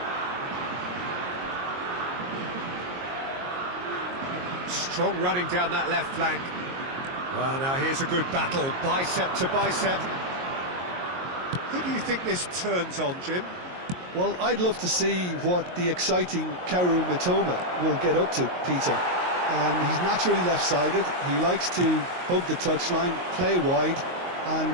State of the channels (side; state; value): left; late; 22 ms